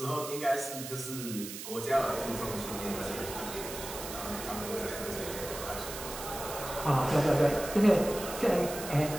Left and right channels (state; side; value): noise; right; hiss, 9 dB below the sound